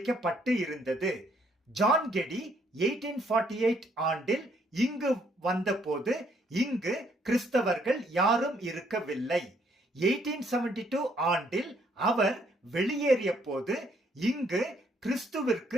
இருந்தது. ஜான் கெடி 1848 ஆண்டில் இங்கு வந்தபோது இங்கு கிறிஸ்தவர்கள் யாரும் இருக்கவில்லை. 1872 ஆண்டில் அவர் வெளியேறிய போது இங்கு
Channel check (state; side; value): normal; both; correlation 0.68